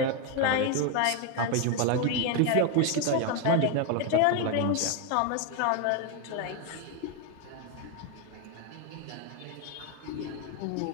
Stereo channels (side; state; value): both; different; correlation 0.02